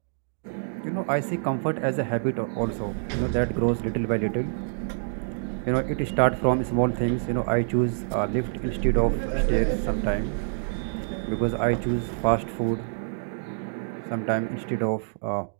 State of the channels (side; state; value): left; silent; digital silence